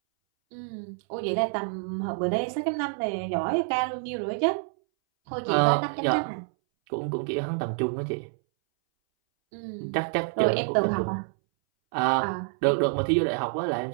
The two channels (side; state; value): left; silent; 59 dB below the other